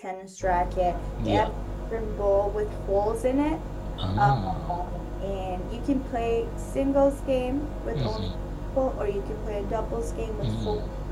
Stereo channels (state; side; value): identical; both; correlation 1.00